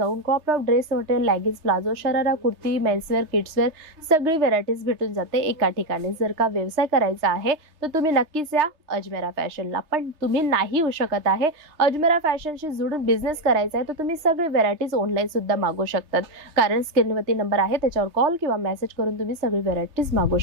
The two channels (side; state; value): left; late; 3.3 ms